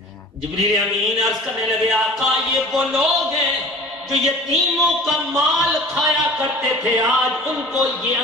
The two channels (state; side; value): normal; both; correlation 0.43